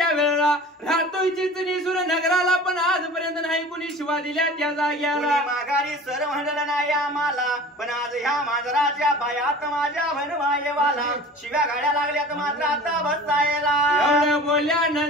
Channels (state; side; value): normal; both; correlation 0.41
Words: वेळेला राहतोय चिचणी सुर नगराला पण आजपर्यंत नाही कुणी शिवा दिल्या त्या जाग्याला माघारी सर म्हणलं नाही आम्हाला पण आज ह्या मांजराच्या पायात माझ्या भनवायवाला शिव्या गाड्या लागल्यात मात्र आता बसायला एवढं